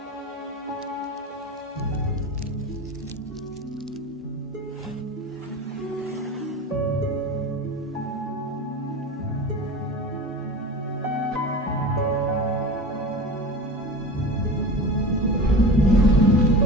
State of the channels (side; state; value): both; normal; correlation 0.32